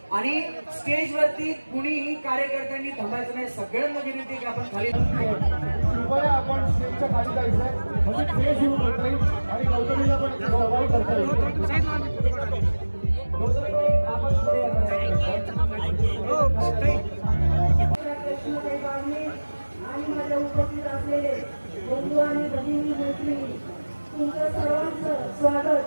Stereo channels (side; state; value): both; inverted; correlation -1.00